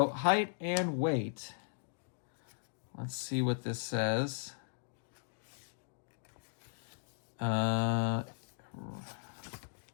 height and weight. Let's see what this says. We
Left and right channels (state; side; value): silent; right; digital silence